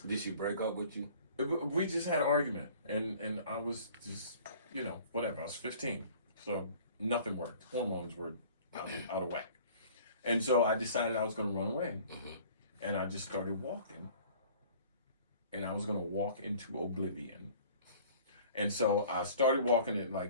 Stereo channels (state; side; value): inverted; both; correlation -0.49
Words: Did she break up with you? We just had an argument, and I was just, whatever. I was 15, so nothing worked. Hormones were out of whack. And so I decided I was going to run away. And I just started walking. And I was going to walk into oblivion. And so I started walking at